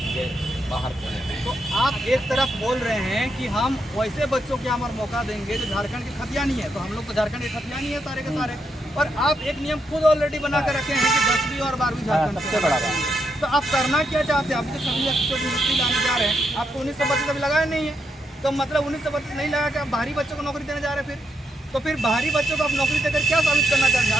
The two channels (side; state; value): both; normal; correlation 0.80